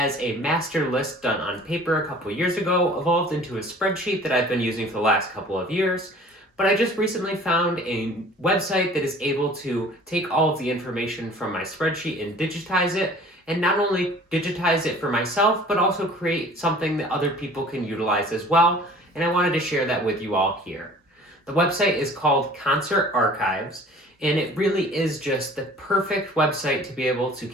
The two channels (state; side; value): normal; both; correlation 0.48